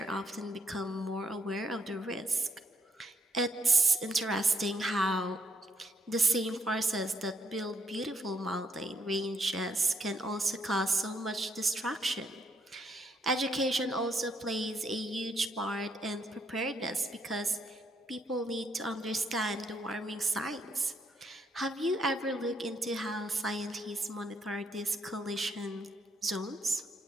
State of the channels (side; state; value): both; normal; correlation 0.73